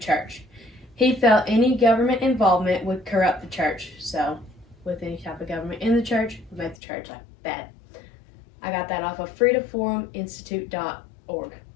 He felt any government involvement would corrupt the church, so with any type of government in the church would make the church like bad. I got that off of freedomforuminstitute.org.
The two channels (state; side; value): drops out; right; at 6.8 s